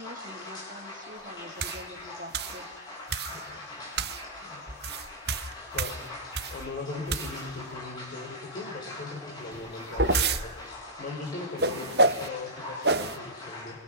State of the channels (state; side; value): normal; both; correlation -0.15